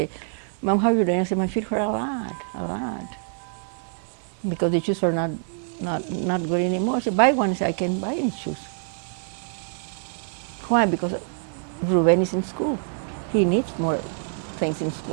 Mom, how are you doing? I said, my feet hurt a lot. Because the shoes are not good anymore. I said, buy one. I said, I can't buy any shoes. Why? Because Ruben is in school. He needs more things in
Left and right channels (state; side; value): silent; left; digital silence